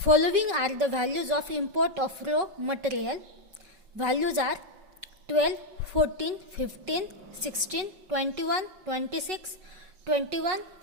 are the values of import of raw material. Values are 12, 14, 15, 16, 21, 26, 21,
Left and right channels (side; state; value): left; late; 5.3 ms